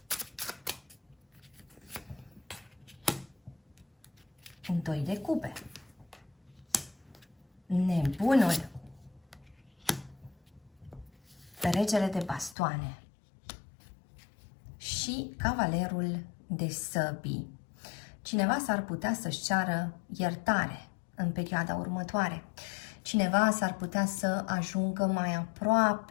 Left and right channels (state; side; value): drops out; right; at 12.6 s